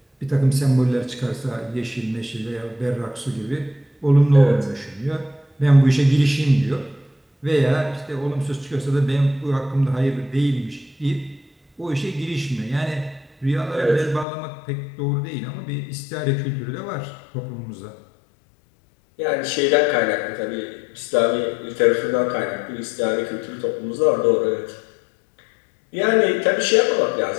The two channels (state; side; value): drops out; right; at 14.2 s